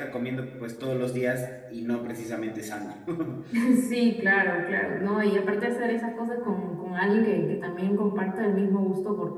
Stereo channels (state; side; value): identical; both; correlation 1.00